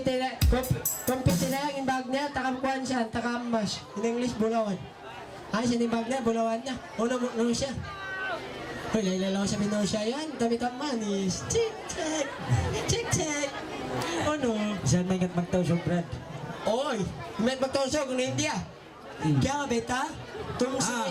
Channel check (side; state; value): both; identical; correlation 1.00